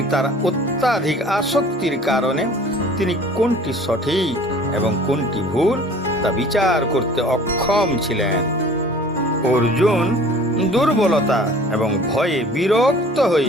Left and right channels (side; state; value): both; normal; correlation 0.48